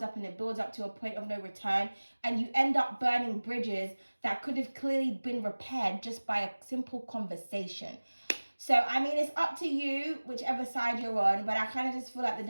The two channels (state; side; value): inverted; both; correlation -1.00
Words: up and it builds up to a point of no return. And you end up burning bridges that could have clearly been repaired just by a simple conversation. So, I mean, it's up to you, whichever side you're on, but I kind of just feel like the